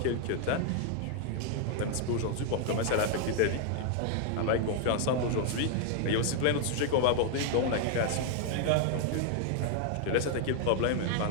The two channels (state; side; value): different; both; correlation 0.00